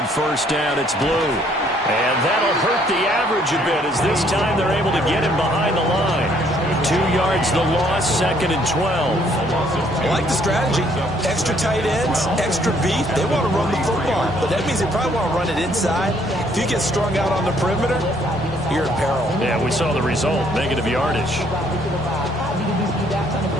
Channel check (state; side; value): normal; both; correlation 0.65